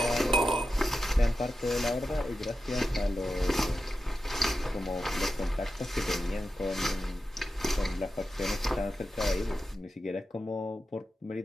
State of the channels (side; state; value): both; normal; correlation 0.90